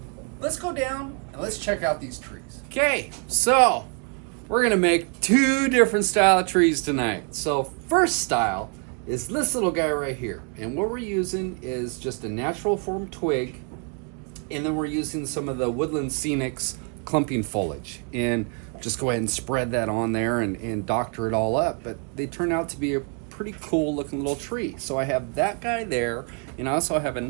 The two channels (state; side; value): quieter; left; 38.3 dB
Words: let's go down and let's check out these trees. Okay, so we're gonna make two different style of trees tonight. So first style is this little guy right here, and what we're using is just a natural form twig, and then we're using some of the woodland scenics clumping foliage, and just go ahead and spread that on there and doctor it all up. But they turn out to be a pretty cool looking little tree. So I have that guy there, and I also have